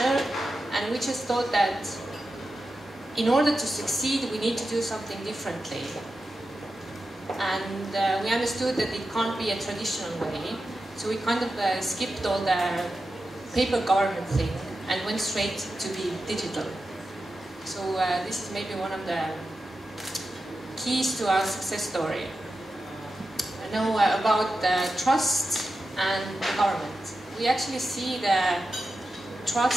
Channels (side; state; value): both; normal; correlation 0.91